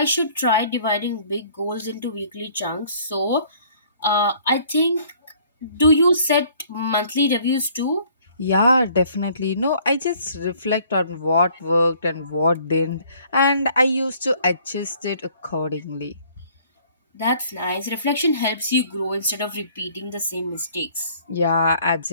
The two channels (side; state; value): both; inverted; correlation -0.58